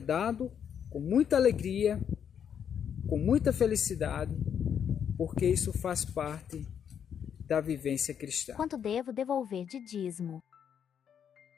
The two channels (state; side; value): quieter; right; 8.2 dB